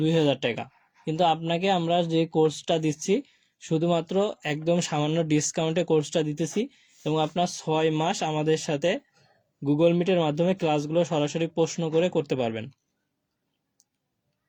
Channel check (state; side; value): identical; both; correlation 1.00